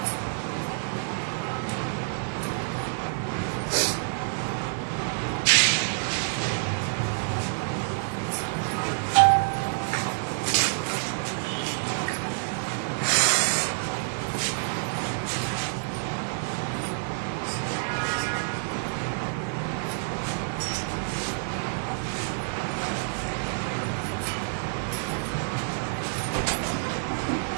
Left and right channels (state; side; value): silent; left; 57 dB below the other